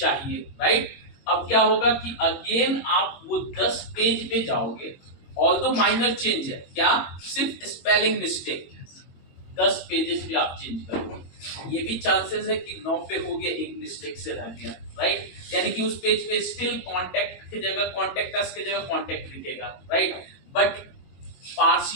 राइट। अब क्या होगा कि अगेन आप वो 10 पेज पे जाओगे, ऑल्दो माइनर चेंज है, क्या सिर्फ स्पेलिंग मिस्टेक, 10 पेजेस पे आप चेंज करोगे, ये भी चांसेस है कि 9 पे हो गया, एक मिस्टेक से रह गया, राइट। यानी कि उस पेज पे स्टिल कॉन्टैक्ट की जगह कॉन्टैक्ट अस की जगह कॉन्टैक्ट दिखेगा, राइट। बट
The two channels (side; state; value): right; late; 22 ms